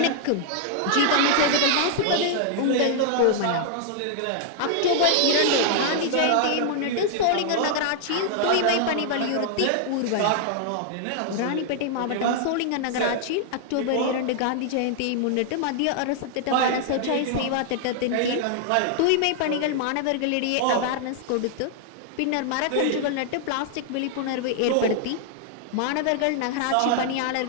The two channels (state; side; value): different; both; correlation -0.01